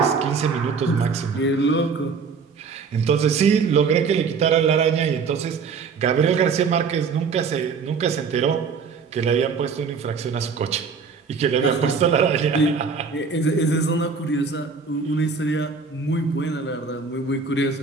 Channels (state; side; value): quieter; left; 5.3 dB